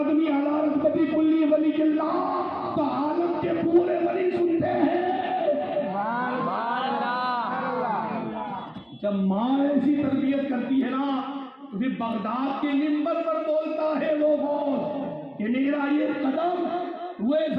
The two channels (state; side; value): identical; both; correlation 1.00